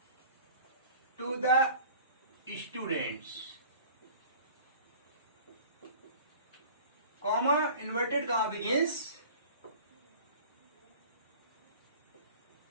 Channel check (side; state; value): both; inverted; correlation -0.45